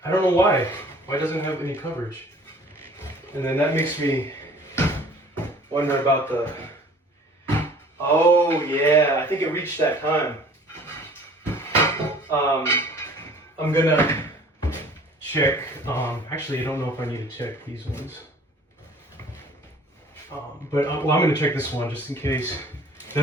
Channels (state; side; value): normal; both; correlation 0.50